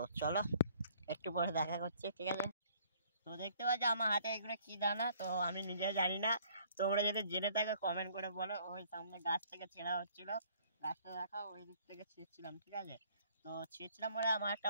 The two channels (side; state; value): both; inverted; correlation -0.59